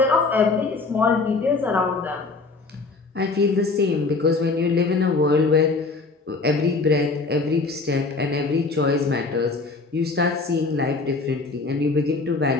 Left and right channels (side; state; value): right; quieter; 3.9 dB